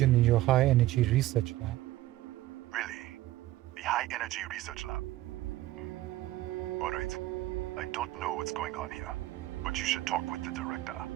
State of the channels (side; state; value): left; quieter; 15.9 dB